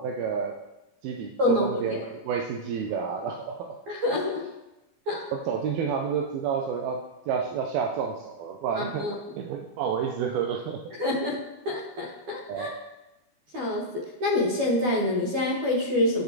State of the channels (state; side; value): late; left; 12 ms